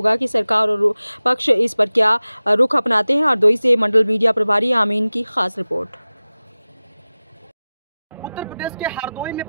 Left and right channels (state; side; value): inverted; both; correlation -0.97